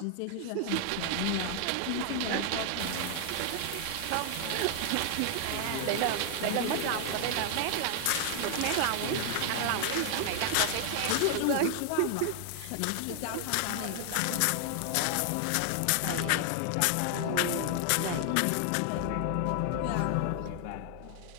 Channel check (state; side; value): different; both; correlation 0.00